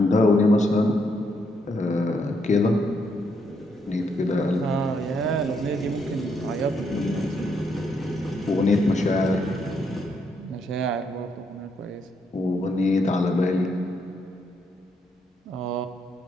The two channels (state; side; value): normal; both; correlation 0.76